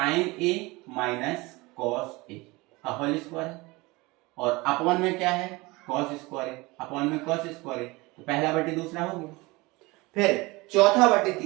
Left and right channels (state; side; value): quieter; left; 23.1 dB